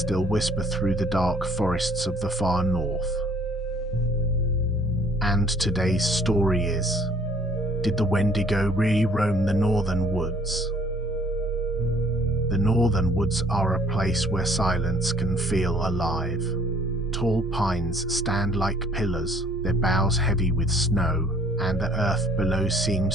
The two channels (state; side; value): normal; both; correlation 0.57